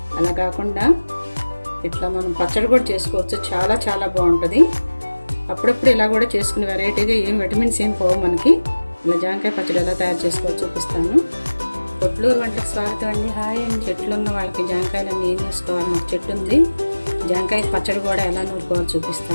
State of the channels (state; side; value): inverted; both; correlation -1.00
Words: అలా కాకుండా ఇట్లా మనం పచ్చడి కూడా చేసుకోవచ్చు. చాలా చాలా బాగుంటుంది. అప్పుడప్పుడు ఇలా కూడా చేసుకుని వెరైటీగా ఏం విటమిన్స్ ఏం పోవు మనకి. ఇలా జామకాయ పచ్చడి ఎలా తయారు చేసుకోవాలో చూపిస్తాను. పొట్లూరు వంటలకు స్వాగతం అండి. హాయ్ అండి. చెట్లు ఉన్న వాళ్ళకి జామకాయలన్నీ ఏం చేసుకోవాలి. మాకు చెట్టు ఉంది. జామకాయ పచ్చడి కూడా ఎలా నూరుకోవాలో